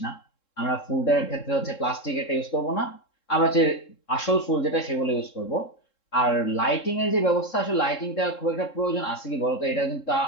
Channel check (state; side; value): late; right; 3.7 ms